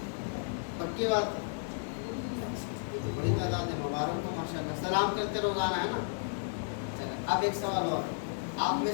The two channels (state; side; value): silent; right; 56 dB below the other